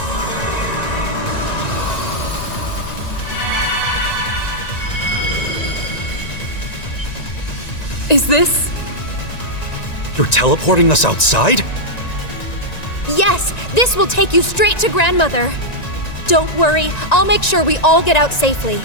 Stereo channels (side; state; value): right; late; 1.9 ms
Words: Is this? You're teleporting us outside? Yes, this will take you straight to grandmother. Don't worry, I'll make sure we all get out safely.